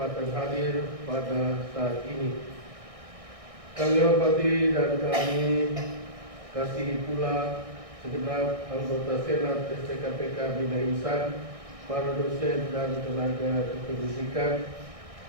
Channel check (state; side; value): late; left; 1.6 ms